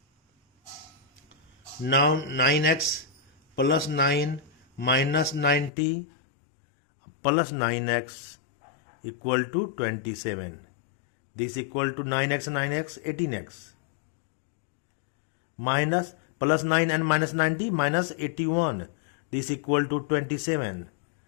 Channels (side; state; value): right; drops out; at 5.7 s